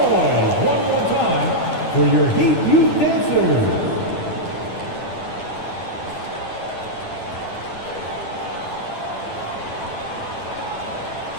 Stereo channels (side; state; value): right; late; 9.7 ms